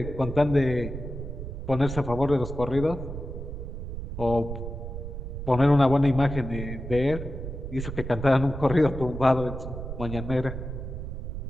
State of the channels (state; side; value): noise; right; rumble, 7 dB below the sound